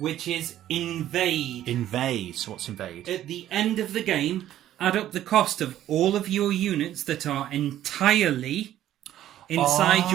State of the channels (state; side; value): quieter; left; 12.4 dB